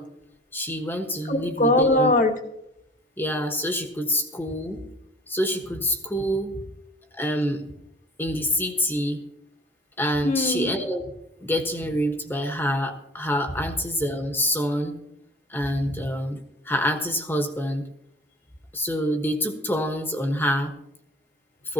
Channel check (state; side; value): normal; both; correlation 0.45